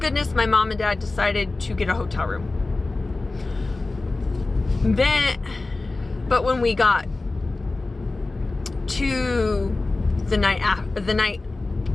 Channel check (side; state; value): right; quieter; 3.3 dB